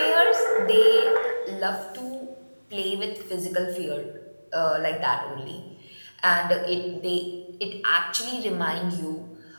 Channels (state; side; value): inverted; both; correlation -1.00